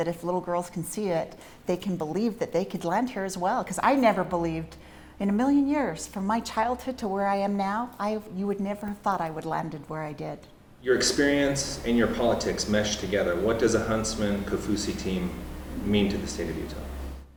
if little girls can see it, they can believe that they could land here as well. Because I never believed in a million years, from my childhood to where I am now, you would never have thought I would landed where I did. Your experience and your politics mesh together. What does a Huntsman Kaufusi team mean to the state of Utah?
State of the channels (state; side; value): identical; both; correlation 1.00